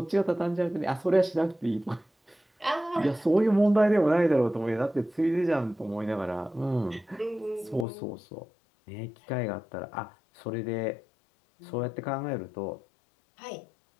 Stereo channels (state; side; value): drops out; right; at 7.9 s